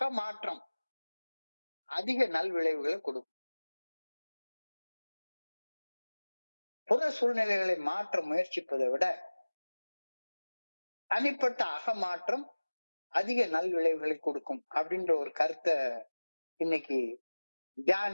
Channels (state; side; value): inverted; both; correlation -1.00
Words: மாற்றம் அதிக நல்விளைவுகளை கொடுக்கும். புற சூழ்நிலைகளை மாற்ற முயற்சிப்பதை விட தனிப்பட்ட அக மாற்றம் அதிக நல்விளைவுகளை கொடுக்கும் அப்படின்ற ஒரு கருத்தை இன்னைக்கு